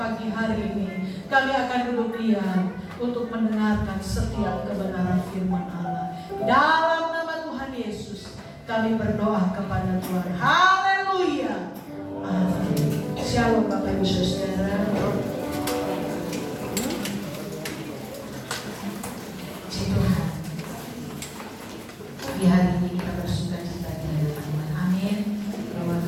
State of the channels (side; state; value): both; identical; correlation 1.00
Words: hari ini. Kami akan duduk diam untuk mendengarkan setiap kebenaran firman Allah. Dalam nama Tuhan Yesus kami berdoa kepada Tuhan. Haleluya. Amin. Shalom Bapak Ibu Saudara. Puji Tuhan. Di hari ini kita bersuka cita di hadapan Tuhan. Amin. Bahwa